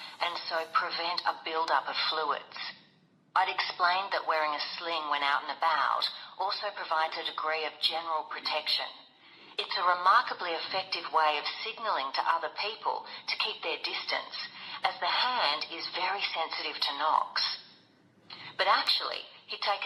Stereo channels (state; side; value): identical; both; correlation 1.00